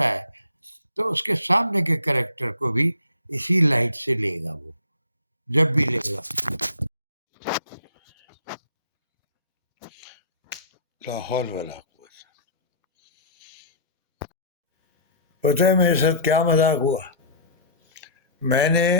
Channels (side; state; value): both; inverted; correlation -0.44